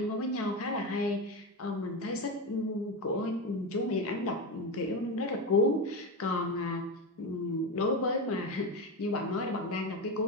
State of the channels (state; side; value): normal; both; correlation 0.17